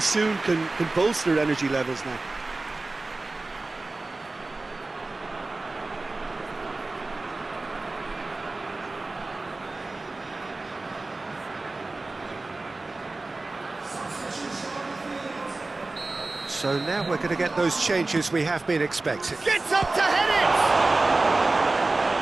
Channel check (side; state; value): left; quieter; 3.3 dB